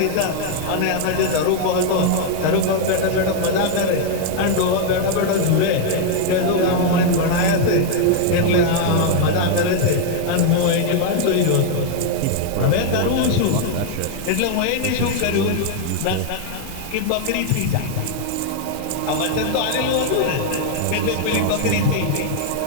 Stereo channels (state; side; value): different; both; correlation 0.00